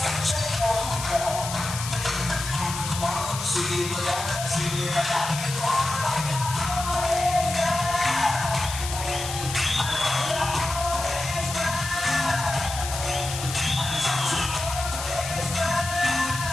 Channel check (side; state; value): left; noise; hiss, 7 dB below the sound